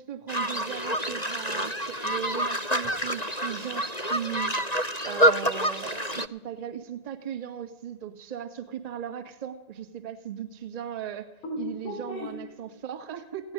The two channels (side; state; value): right; late; 1.9 ms